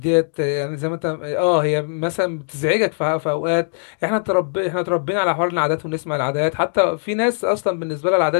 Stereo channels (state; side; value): silent; right; digital silence